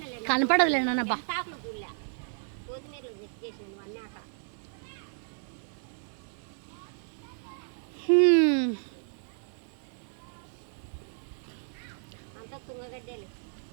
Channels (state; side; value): silent; left; 56 dB below the other